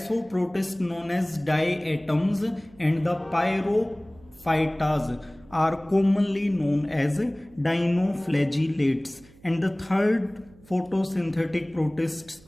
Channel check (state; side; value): noise; right; hum, 25 dB below the sound